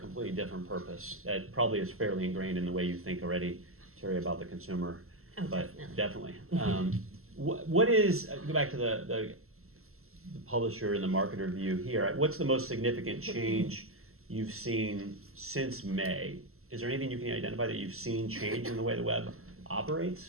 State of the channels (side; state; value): left; late; 0.62 ms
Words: different purpose. That probably is fairly ingrained in the way you think already, Terry, about the consumer. Oh, But definitely. what is, go back to the publisher and the marketer view here, what's the most significant change you've seen since May? Is there anything you can identify that you've seen change in the way the web